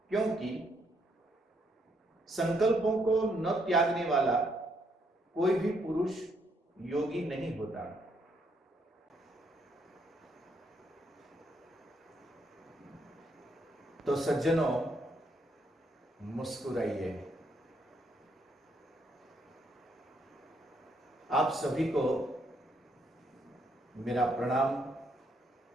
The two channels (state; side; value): normal; both; correlation 0.73